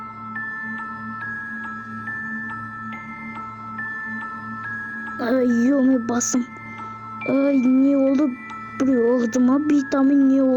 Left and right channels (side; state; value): both; identical; correlation 1.00